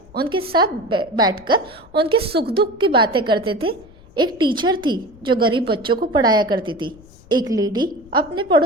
उनके साथ बैठकर उनके सुख दुख की बातें करते थे। एक टीचर थी जो गरीब बच्चों को पढ़ाया करती थी। एक लेडी अपने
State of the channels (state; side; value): noise; left; rumble, 24 dB below the sound